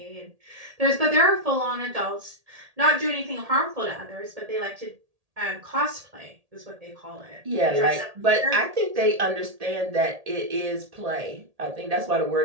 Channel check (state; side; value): late; left; 1.8 ms